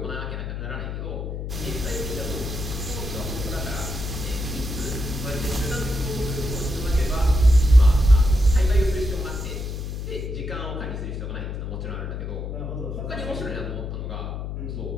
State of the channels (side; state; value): left; noise; hum, 5 dB below the sound